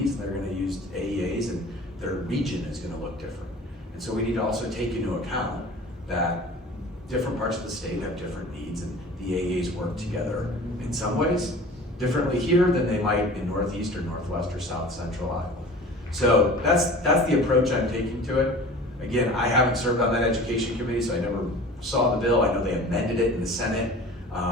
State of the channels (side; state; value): both; normal; correlation 0.41